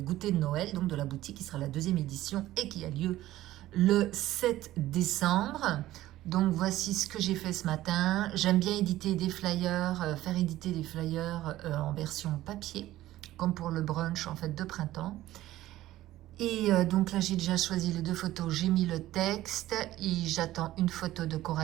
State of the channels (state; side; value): quieter; left; 15.1 dB